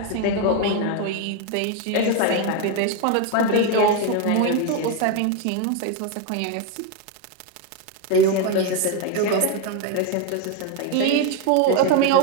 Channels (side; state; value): both; different; correlation 0.02